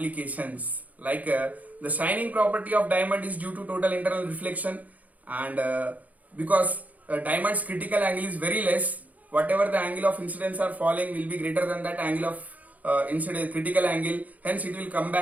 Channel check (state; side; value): late; left; 0.076 ms